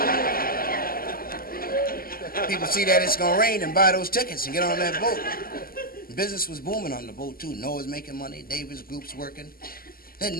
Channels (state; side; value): late; right; 0.42 ms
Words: People see that it's gonna rain and buy those tickets and get on that boat. Business was booming on the boat, too. Noah's making money. David's group's working. Then